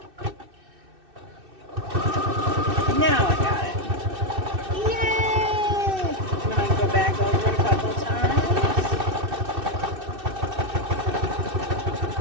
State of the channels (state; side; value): late; left; 2.6 ms